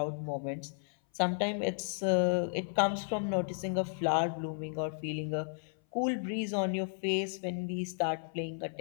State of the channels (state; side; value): silent; right; 55 dB below the other